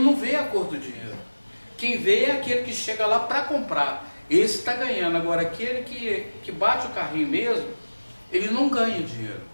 não vê a cor do dinheiro. Quem vê é aquele que chega lá para comprar. Esse está ganhando. Agora, aquele que bate o carrinho mesmo, ele não ganha dinheiro.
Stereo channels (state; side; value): inverted; both; correlation -1.00